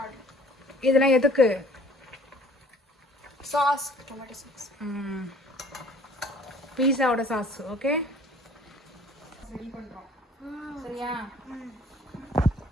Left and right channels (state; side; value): normal; both; correlation 0.54